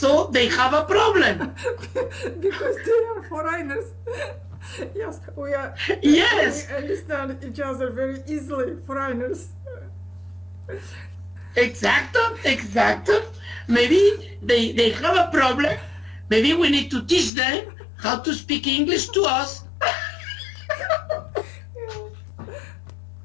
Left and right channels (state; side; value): drops out; right; at 17.3 s